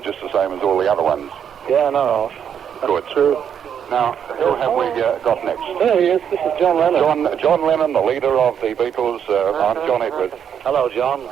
the same as all the other ones. Yeah, no. Good. True. Now, who have we got next? There he is. This is John Lennon. John Lennon, the leader of the Beatles. I'm John Edwards. Hello, John.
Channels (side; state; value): left; quieter; 8.3 dB